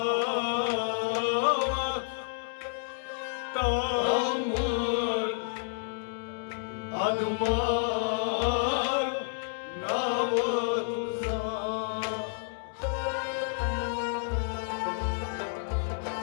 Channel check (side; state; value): right; silent; digital silence